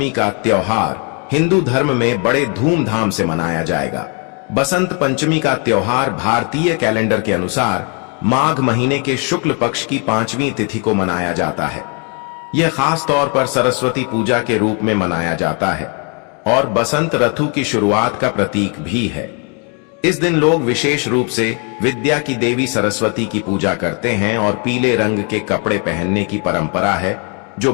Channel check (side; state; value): right; quieter; 36.3 dB